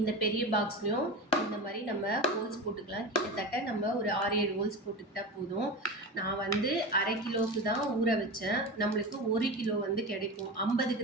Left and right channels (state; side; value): normal; both; correlation 0.26